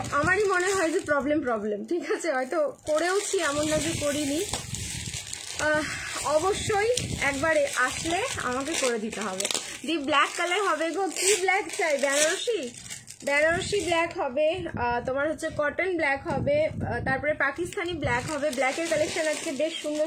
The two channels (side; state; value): both; identical; correlation 1.00